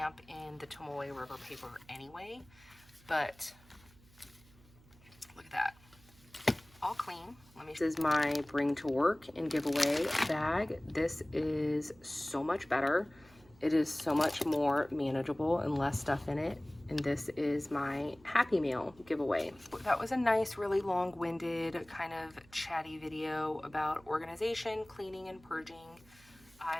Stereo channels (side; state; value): right; noise; hum, 26 dB below the sound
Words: in the Tomoe River paper anyway, but look at that. All clean. This is my bring to work and giveaway bag. This is so much better. It is so much more manageable and less stuff in it. And this is my Happy Meal giveaway. That was a nice, really long-winded, kind of chatty video about organization, cleaning, and purging.